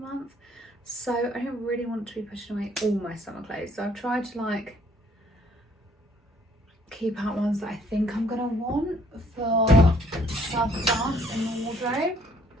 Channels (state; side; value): normal; both; correlation 0.63